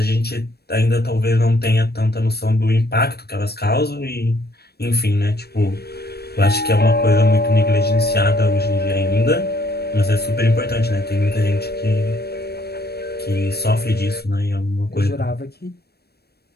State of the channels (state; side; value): late; right; 0.47 ms